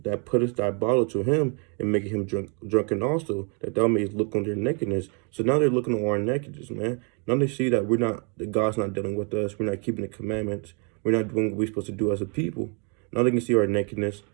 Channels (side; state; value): left; quieter; 36.6 dB